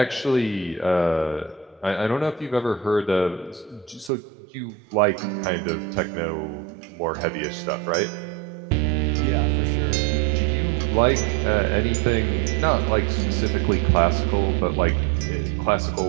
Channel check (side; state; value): left; drops out; at 4.1 s